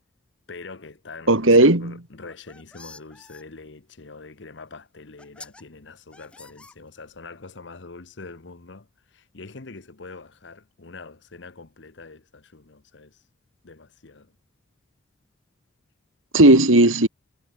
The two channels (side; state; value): both; normal; correlation 0.03